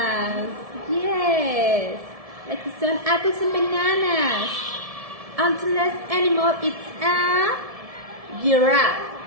Yes, like some apples and bananas. And the last animal is a giraffe.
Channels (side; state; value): left; late; 1.7 ms